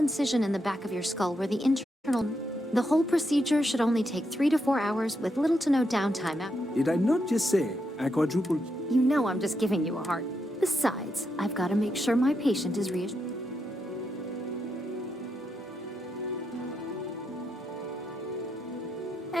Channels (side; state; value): both; normal; correlation 0.82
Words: in the back of your skull where the internal... The whole procedure should only take 3 to 4 hours with little to no downtime. Did I not just say I quadrupled? You know I'm just giving you a heart. Besides, I've got to make sure my patient is reassured.